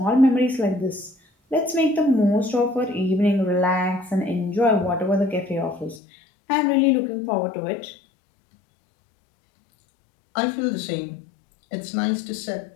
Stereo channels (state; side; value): drops out; right; at 6.0 s